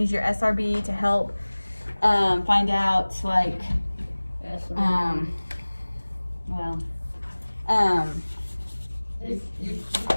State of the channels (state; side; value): inverted; both; correlation -1.00